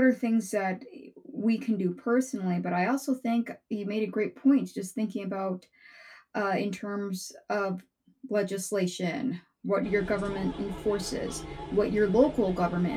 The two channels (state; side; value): identical; both; correlation 1.00